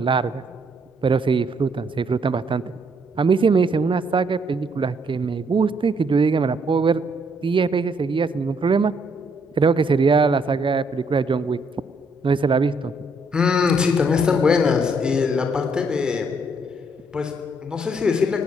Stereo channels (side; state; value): both; normal; correlation 0.70